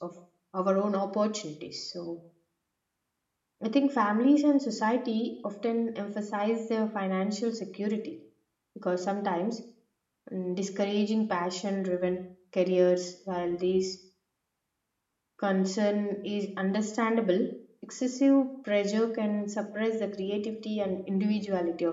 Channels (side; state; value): both; identical; correlation 1.00